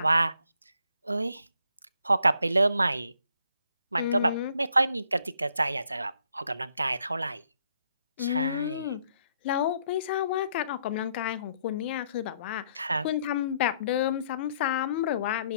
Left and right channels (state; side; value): inverted; both; correlation -0.70